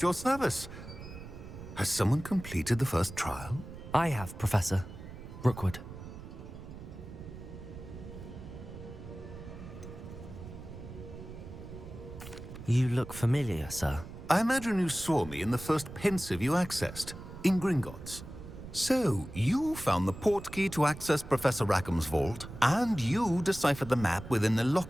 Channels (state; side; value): noise; right; rumble, 13 dB below the sound